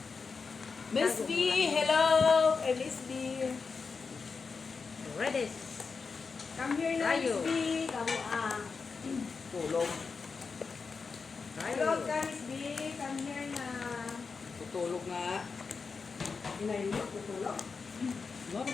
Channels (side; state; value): right; quieter; 4.9 dB